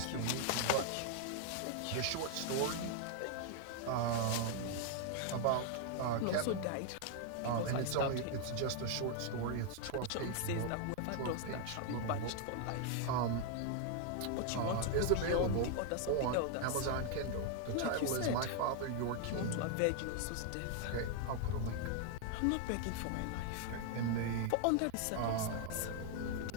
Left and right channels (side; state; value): both; different; correlation 0.00